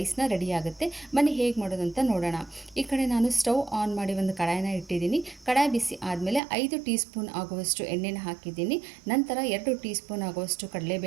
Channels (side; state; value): left; drops out; at 6.4 s